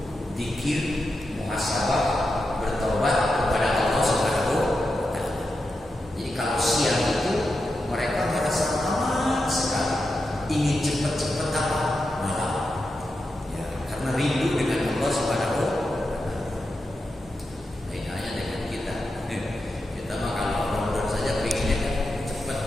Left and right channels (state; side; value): normal; both; correlation 0.88